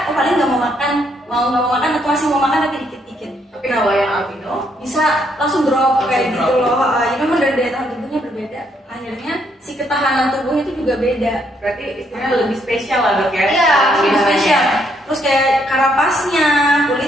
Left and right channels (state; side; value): normal; both; correlation 0.72